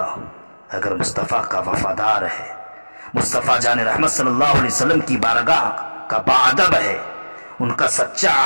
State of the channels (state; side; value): inverted; both; correlation -1.00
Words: ہو، اگر مصطفیٰ کا وفادار ہے، مصطفیٰ جان رحمت صلی اللہ علیہ وسلم کی بارگاہ کا باادب ہے، ان کا سچا